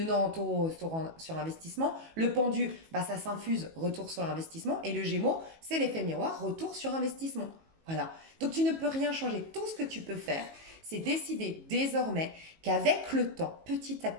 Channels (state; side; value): late; left; 18 ms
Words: en taureau sur investissement, le pendu, bah ça s'infuse, retour sur investissement, et le Gémeaux, c'est l'effet miroir, retour sur investissement. Voilà. Donc tu ne peux rien changer. Tout ce que tu peux faire, c'est décider désormais qu'avec le temps, petit à